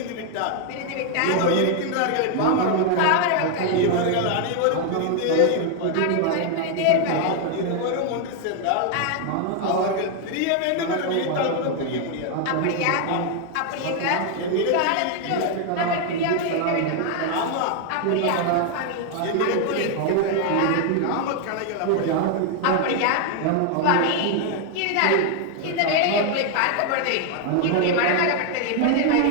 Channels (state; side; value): different; both; correlation 0.00